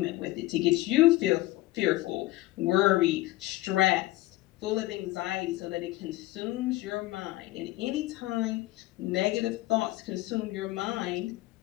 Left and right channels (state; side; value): quieter; right; 17.9 dB